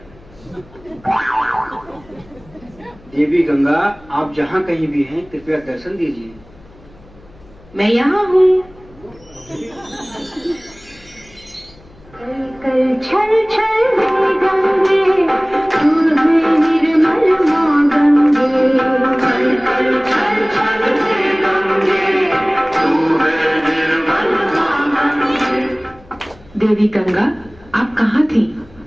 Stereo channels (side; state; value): left; noise; hum, 25 dB below the sound